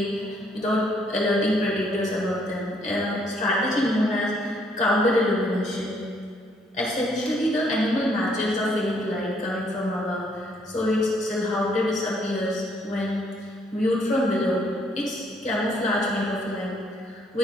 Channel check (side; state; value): both; normal; correlation 0.68